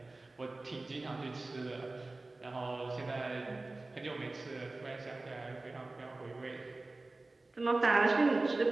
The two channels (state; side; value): quieter; left; 3.1 dB